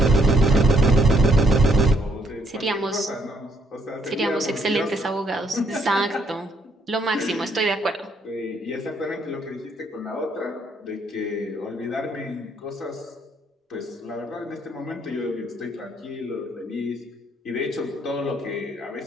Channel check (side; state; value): both; normal; correlation 0.70